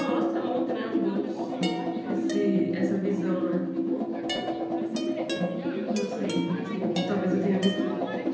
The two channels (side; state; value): both; identical; correlation 1.00